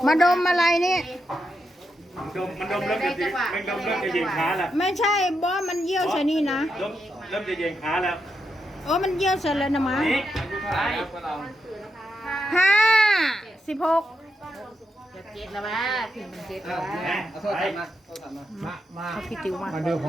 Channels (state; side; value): normal; both; correlation 0.84